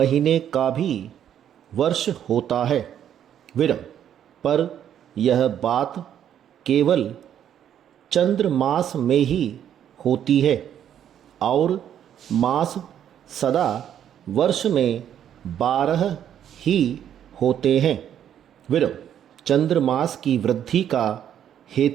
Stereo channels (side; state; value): left; quieter; 9.8 dB